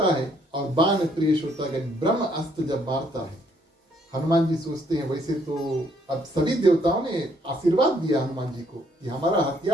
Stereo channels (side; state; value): both; normal; correlation 0.67